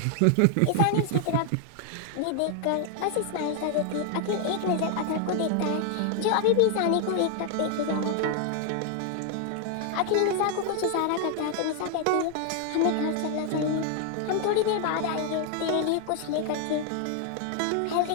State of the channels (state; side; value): different; both; correlation 0.00